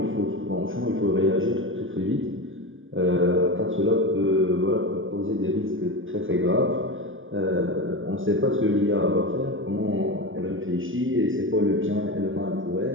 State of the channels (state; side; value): late; left; 0.58 ms